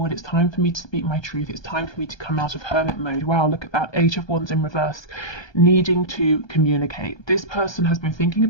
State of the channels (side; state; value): right; late; 1.2 ms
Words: it's time for me to speak my truth, it's time for me to come out of Hermit mode. Wow, look at that, Eight of Wands in reverse, needing to communicate. This person has been thinking